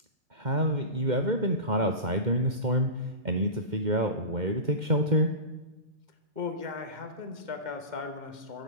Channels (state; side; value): late; left; 2.1 ms